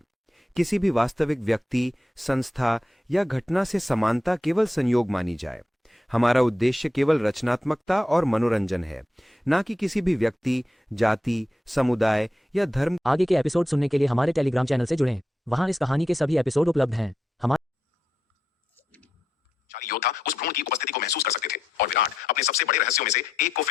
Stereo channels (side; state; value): both; normal; correlation 0.85